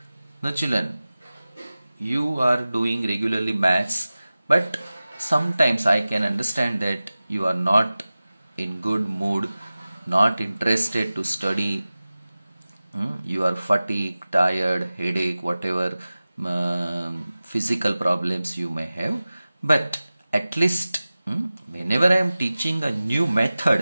Now children, you are doing regularly maths, but sometimes I can understand that you are not in good mood, not interested to study. You are fatigued, tired, headache, whatever physical problems you may have. But at least whenever I am teaching a new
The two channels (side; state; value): both; inverted; correlation -0.97